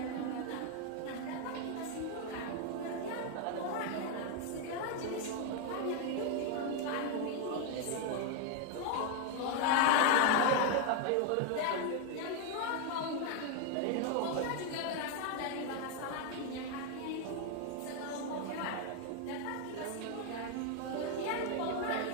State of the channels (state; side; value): different; both; correlation 0.01